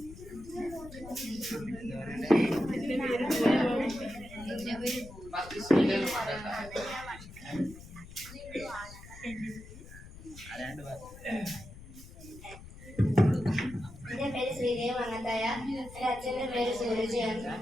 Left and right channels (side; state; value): left; noise; rumble, 16 dB below the sound